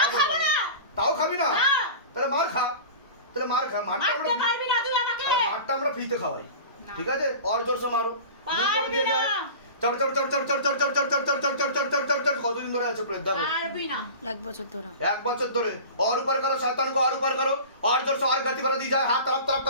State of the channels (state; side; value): inverted; both; correlation -0.36